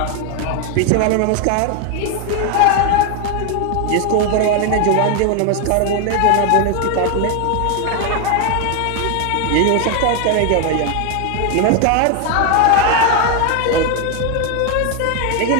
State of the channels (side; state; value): both; different; correlation 0.01